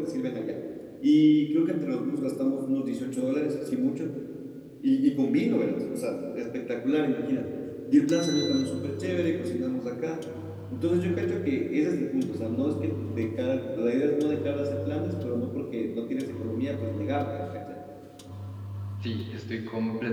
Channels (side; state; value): both; identical; correlation 1.00